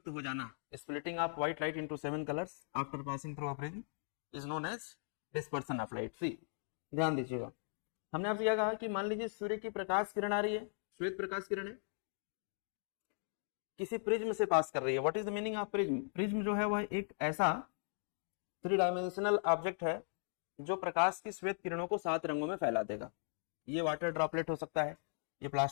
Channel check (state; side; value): silent; right; digital silence